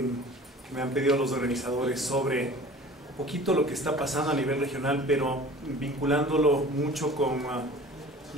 me han pedido los organizadores sobre un poquito lo que está pasando a nivel regional, pero vinculándolo mucho con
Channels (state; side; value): normal; both; correlation 0.44